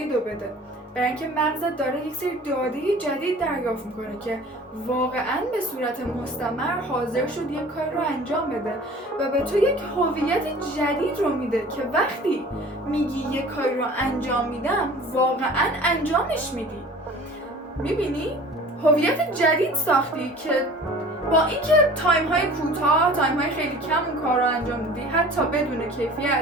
رو بده. برای اینکه مغزت داره یک سری داده جدید دریافت میکنه که واقعا به صورت مستمر حاضر شد یک کار رو انجام بده و به تو یک هویت جدید رو میده که وقتی میگی یک کار رو انجام میدم واقعا انجامش میدی. میبینی؟ هویت جدید ساختی که با اینکه تایم های کوتاه، تایم های خیلی کم اون کار رو انجام میدی حتی بدون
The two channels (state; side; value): normal; both; correlation 0.45